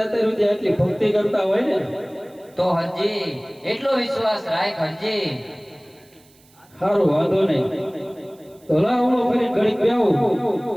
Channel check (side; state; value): right; noise; hiss, 30 dB below the sound